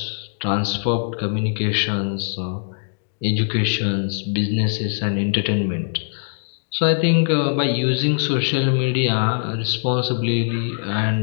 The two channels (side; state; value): right; silent; digital silence